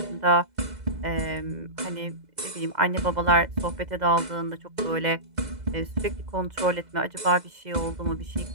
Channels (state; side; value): late; left; 2.0 ms